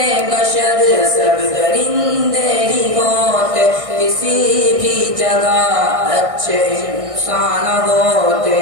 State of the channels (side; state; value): left; late; 1.6 ms